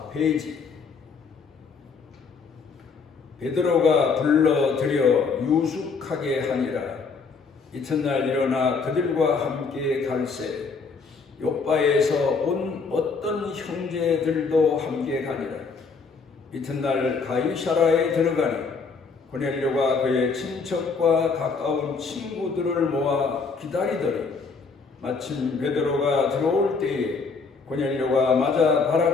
베드로가 불러들여 유숙하게 하니라. 이튿날 일어나 그들과 함께 갈새 욥바에서 온 어떤 형제들도 함께 가니라. 이튿날 가이사라에 들어가니 고넬료가 그의 친척과 가까운 친구들을 모아 기다리더니 마침 베드로가 들어올 때에 고넬료가 맞아 발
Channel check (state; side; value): quieter; right; 4.8 dB